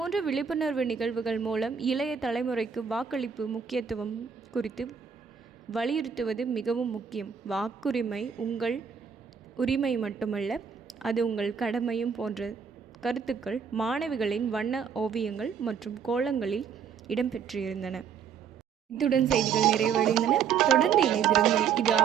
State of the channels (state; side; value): quieter; left; 7.1 dB